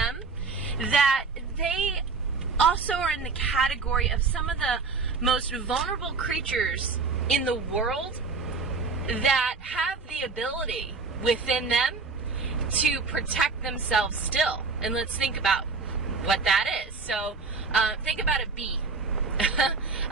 that they also are in the category of some of the most vulnerable creatures in the world that have the ability within them to protect themselves still. And let's think about what that is. So think about a bee.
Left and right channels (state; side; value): quieter; left; 4.4 dB